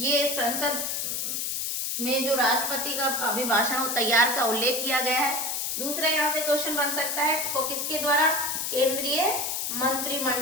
संसद में जो राष्ट्रपति का अभिभाषण वो तैयार का उल्लेख किया गया है। दूसरा यहाँ से क्वेश्चन बन सकता है को किसके द्वारा? केंद्रीय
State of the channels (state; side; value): noise; left; hiss, 1 dB below the sound